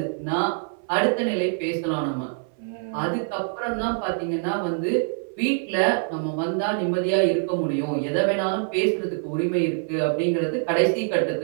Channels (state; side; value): silent; left; 58 dB below the other